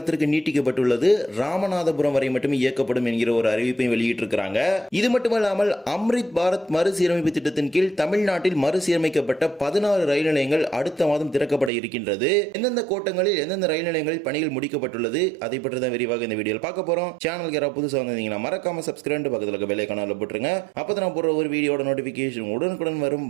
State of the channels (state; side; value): drops out; left; at 11.7 s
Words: நீட்டிக்கப்பட்டுள்ளது. ராமநாதபுரம் வரை மட்டுமே இயக்கப்படும் என்கிற ஒரு அறிவிப்பை வெளியிட்டிருக்கிறாங்க. இது மட்டுமல்லாமல் அம்ரித் பாரத் மறுசீரமைப்பு திட்டத்தின் கீழ் தமிழ்நாட்டில் மறுசீரமைக்கப்பட்ட 16 ரயில் நிலையங்கள் அடுத்த மாதம் திறக்கப்பட இருக்கின்றது. எந்தெந்த கோட்டங்களில் எந்தெந்த ரயில் நிலையங்களில் பணிகள் முடிக்கப்பட்டுள்ளது அதை பற்றி தான் விரிவாக இந்த வீடியோவில் பார்க்க போறோம். சேனலுக்கு யாராவது புதுசாக வந்தீங்கன்னா மறக்காம சப்ஸ்கிரைப் பக்கத்தில் இருக்க பெல் ஐகானை போட்டுருங்க. அப்பதான் நான் போடுற ஒரு வீடியோட நோட்டிபிகேஷன் உடனுக்குடன் வரும்.